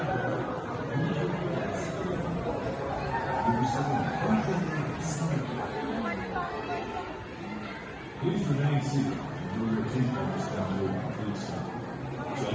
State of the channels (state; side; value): identical; both; correlation 1.00